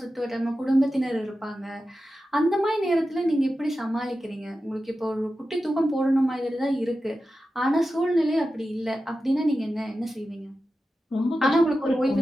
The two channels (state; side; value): normal; both; correlation 0.92